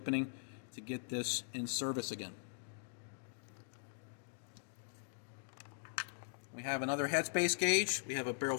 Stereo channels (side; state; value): right; silent; digital silence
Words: to get this in service again. We have another headspace gauge, we have a barrel